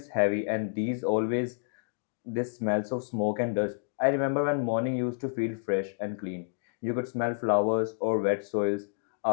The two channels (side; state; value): right; silent; digital silence